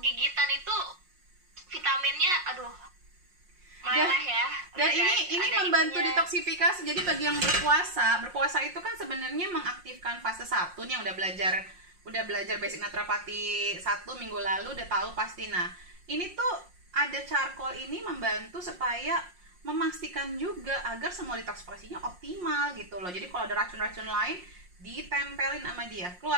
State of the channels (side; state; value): left; late; 5.6 ms